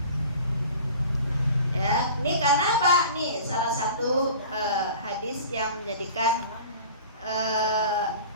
Ya, ini karena apa? Nih salah satu hadis yang menjadikan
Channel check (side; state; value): both; inverted; correlation -0.41